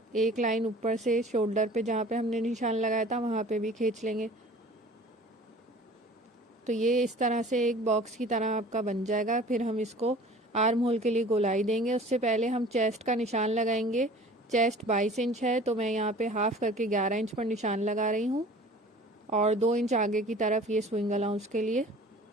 एक लाइन ऊपर से शोल्डर पे जहाँ पे हमने निशान लगाया था वहाँ पे भी खींच लेंगे। तो ये इस तरह से एक बॉक्स की तरह आपका बन जाएगा। फिर हम इसको आर्म होल के लिए गोलाई देंगे। उससे पहले हम चेस्ट का निशान लगाएंगे। चेस्ट 22 इंच है, तो मैं यहाँ पे हाफ करके 11 इंच पर निशान लगा रही हूँ, और 2 इंच आगे की तरफ ये स्विंग अलाउंस के लिए।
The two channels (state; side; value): normal; both; correlation 0.45